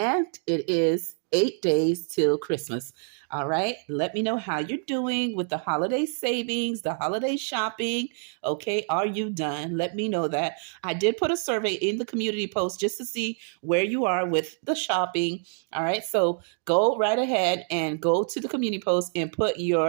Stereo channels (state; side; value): silent; left; 56 dB below the other